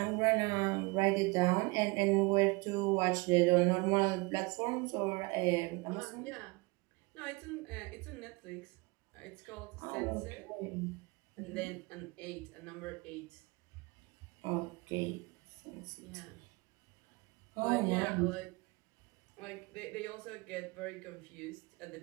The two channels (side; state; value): left; quieter; 26.2 dB